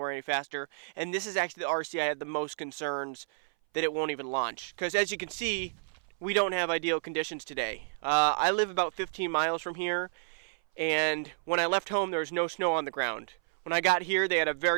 any faster. And this is actually the RC I had the most concerns that it won't even launch. Because as you can see, we don't have ideal conditions today. I live about 15 miles from here, and when I left home, there was no snow on the ground. When I got here, they had a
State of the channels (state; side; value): silent; left; 57 dB below the other